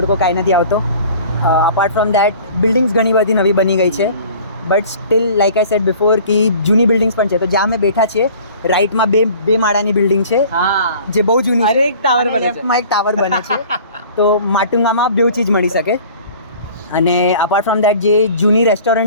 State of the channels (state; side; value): inverted; both; correlation -0.47